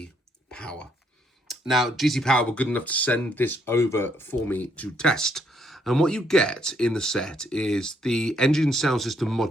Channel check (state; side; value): normal; both; correlation 0.72